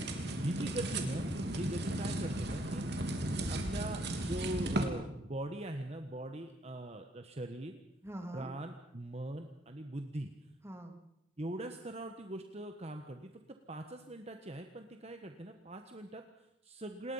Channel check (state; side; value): normal; both; correlation 0.67